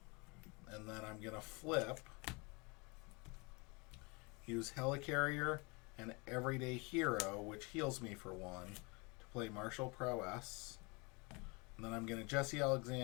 And then I'm gonna flip, use Helicarrier and Everyday Hero, which heals me for 1, to play Martial Prowess. And then I'm gonna Jesse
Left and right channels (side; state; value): right; quieter; 28.8 dB